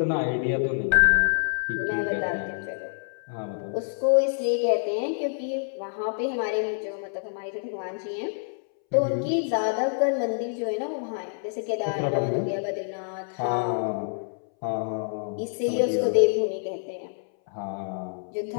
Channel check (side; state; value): right; silent; 60 dB below the other